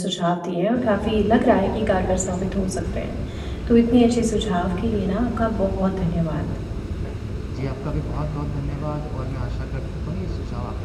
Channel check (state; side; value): identical; both; correlation 1.00